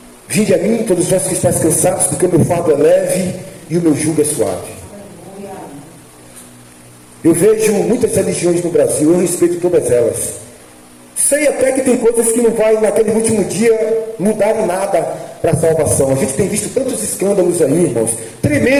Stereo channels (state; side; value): identical; both; correlation 1.00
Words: Vinde a mim, todos vós que estáis cansados, porque o meu fardo é leve e o meu jugo é suave. Eu vejo muitas religiões no Brasil, eu respeito todas elas. Sei até que tem coisas que não vai naquele último dia mudar em nada para a salvação. A gente tem visto tantos escândalos aí, irmãos,